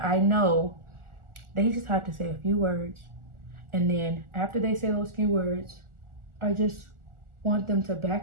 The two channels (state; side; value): late; left; 1.4 ms